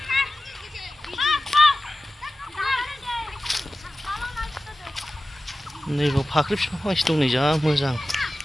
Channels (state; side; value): normal; both; correlation 0.95